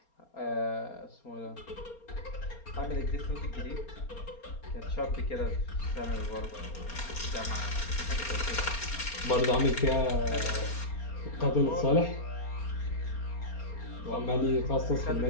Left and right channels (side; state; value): right; late; 4.3 ms